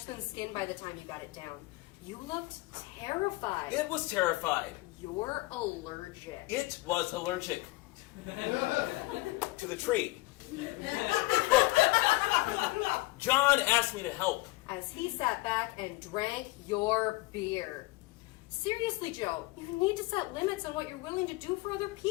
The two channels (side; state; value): right; quieter; 21.1 dB